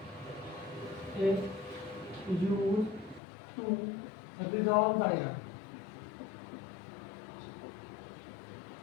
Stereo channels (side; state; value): right; drops out; at 3.2 s